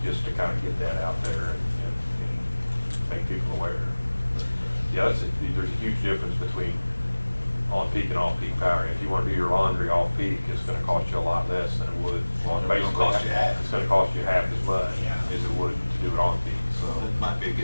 just to kind of get that out there and make people aware. But, yeah, there's a huge difference between on-peak and off-peak power. If you want to do your laundry off-peak, it's going to cost you a lot less than it would. Laundry don't cost you half. It's going to cost you half as much Yeah. as it would to do it on-peak. So, It might be a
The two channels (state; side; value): inverted; both; correlation -1.00